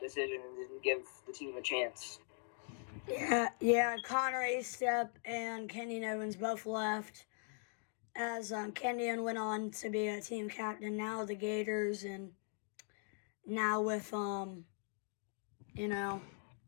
decision and didn't give the team a chance. Yeah, Connor Estep and Kenyon Evans both left as Kenyon went on to be a team captain, now the Gators, and now with, Connor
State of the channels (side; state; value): right; silent; 51 dB below the other